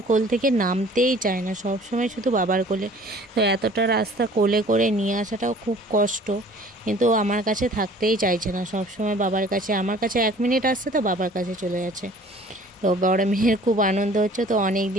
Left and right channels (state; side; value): normal; both; correlation 0.50